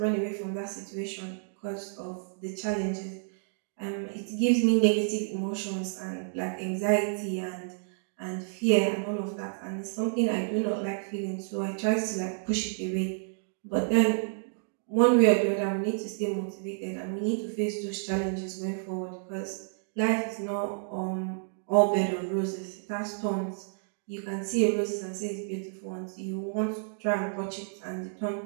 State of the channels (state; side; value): silent; left; digital silence